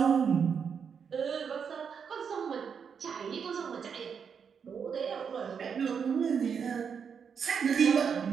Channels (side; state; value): left; quieter; 6.7 dB